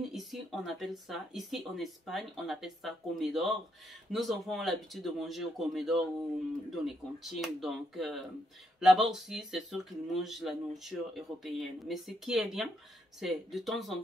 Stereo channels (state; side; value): normal; both; correlation 0.78